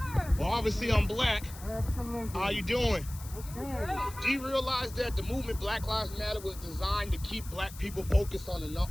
Well, obviously I'm black. How you doing? Do you realize that the movement Black Lives Matter was designed to keep black people focused on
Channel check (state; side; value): noise; left; hiss, 16 dB below the sound